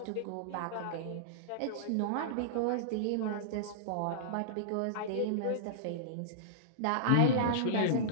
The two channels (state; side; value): different; both; correlation -0.02